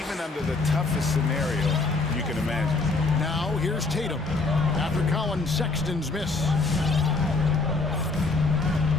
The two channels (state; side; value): quieter; right; 3.6 dB